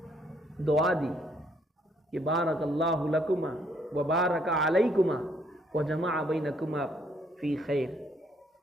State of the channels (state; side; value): normal; both; correlation 0.68